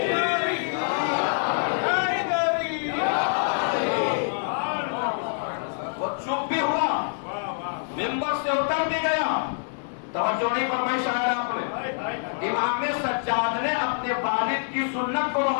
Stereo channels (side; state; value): right; silent; digital silence